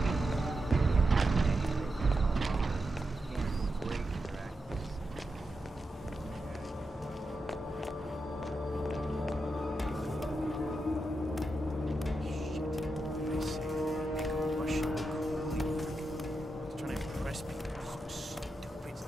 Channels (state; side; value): normal; both; correlation 0.87